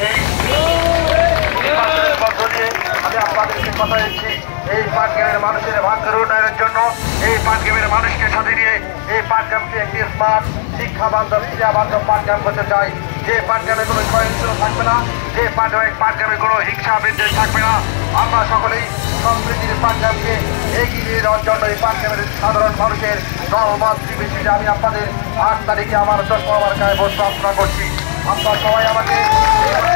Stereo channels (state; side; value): silent; right; 70 dB below the other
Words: এই নির্বাচনের মধ্য দিয়ে আমি আপনাদেরকে কথা দিচ্ছি এই পাঠ ক্যাম্পের মানুষের ভাগ্যের উন্নয়নের জন্য এই পাঠ ক্যাম্পের মানুষকে সাথে নিয়ে এই পাঠ ক্যাম্পকে একটি স্মার্ট শিক্ষা বান্ধব ক্রিয়া বান্ধব পাঠ ক্যাম্প করতে চাই। যে পাঠ ক্যাম্পে কোনো সহিংসতা থাকবে না, যে পাঠ ক্যাম্পে কোনো হিংসা বিদ্বেষ থাকবে না। আমরা সকলেই সম্প্রীতির পাঠ ক্যাম্পকে এগিয়ে নিয়ে যাওয়ার জন্য এই পাঠ ক্যাম্পের সাধারণ মানুষের দলমত নির্বিশেষে আমি আপনাদের 8 তারিখে আমার 10 মার্কায় ভোট প্রার্থনা করছি। আপনারা সবাই আমাকে